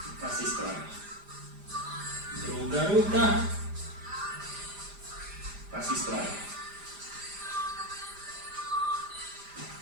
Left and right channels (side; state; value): left; late; 5.0 ms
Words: pa se ispravimo. Druga ruka, pa se ispravimo.